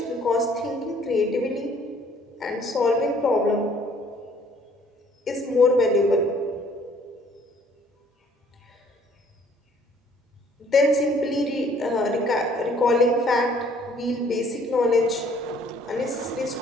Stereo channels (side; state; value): both; normal; correlation 0.59